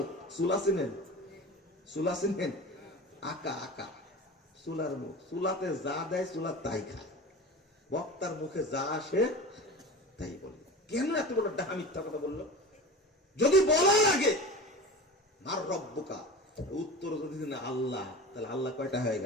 চুলা চিনেন? চুলা চিনেন? আকা আকা চুলার মুখ, চুলাতে যা দেয় চুলা তাই খায়। বক্তার মুখে যা আসে তাই বলে। কেন এত বড় ডাহা মিথ্যা কথা বললো? যদি বলার আগে মার রব্বুকা উত্তর যদি না আল্লাহ, তাহলে আল্লাহ কয়টা হয়ে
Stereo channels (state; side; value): normal; both; correlation 0.33